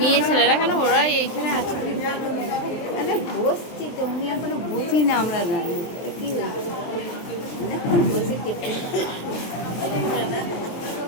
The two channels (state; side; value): late; right; 23 ms